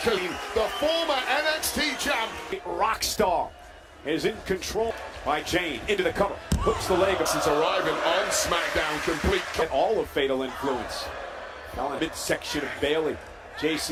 the former NXT champ rock star is in control by Jane into the cover. Hooks the leg. since arriving on SmackDown complete. Get all of Fatal Influence. Now in the midsection of Bayley.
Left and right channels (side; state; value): both; identical; correlation 1.00